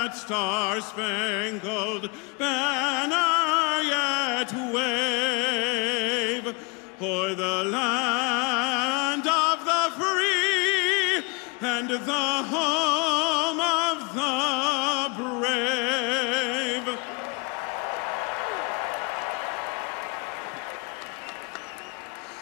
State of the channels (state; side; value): quieter; right; 30.2 dB